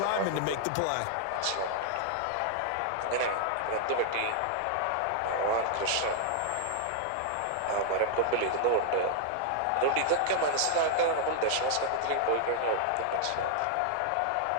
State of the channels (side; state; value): both; different; correlation -0.01